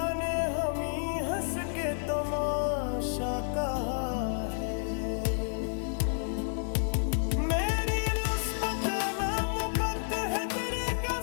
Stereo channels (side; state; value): right; silent; digital silence